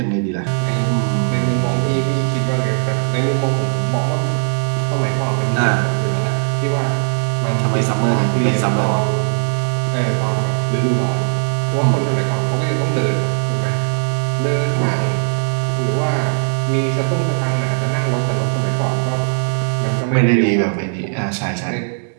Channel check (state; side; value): silent; left; digital silence